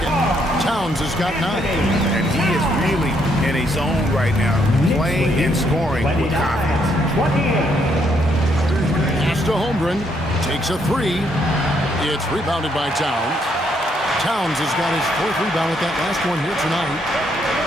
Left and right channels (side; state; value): both; normal; correlation 0.73